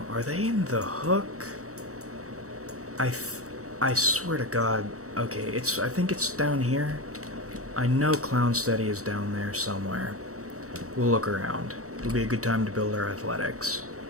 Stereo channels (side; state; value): left; late; 0.65 ms